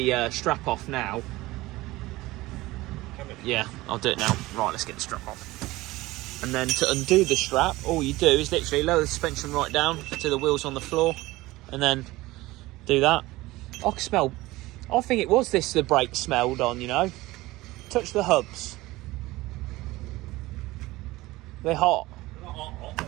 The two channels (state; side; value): quieter; left; 19.1 dB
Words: strap off now. Yeah, I'll do it now. Right, let's get the strap off. And then to undo the strap, all you do is literally lower the suspension right down to the wheels on the floor, and then do that. I can smell, I think it was this the brake smelled on, you know. Touch the hubs. They're hot. They're not hot,